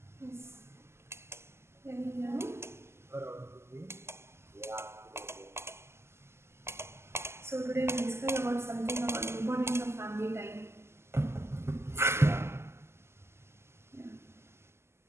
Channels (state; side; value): late; left; 0.12 ms